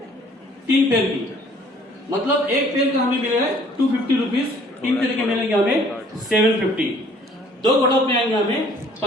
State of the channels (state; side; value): normal; both; correlation 0.57